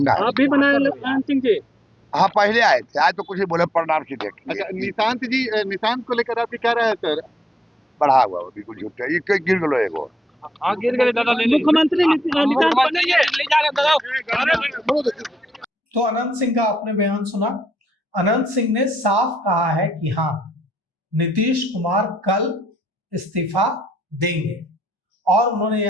आप भी बनाए ललन सिंह जी? हाँ पहले आए थे, आज तो कुछ नहीं बोले, प्रणाम की देख। अच्छा, निशांत जी, निशांत को लेकर आपकी क्या राय है सर? बढ़ा हुआ बिल्कुल झूठ है, ये गिर गलो एगो। गिर गए दादा, मुख्यमंत्री तो अनंत सिंह का आपने बयान सुना। अनंत सिंह ने साफ कहा है कि हाँ, नीतीश कुमार कल इस्तीफा देंगे, और उन्होंने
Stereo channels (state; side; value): normal; both; correlation 0.78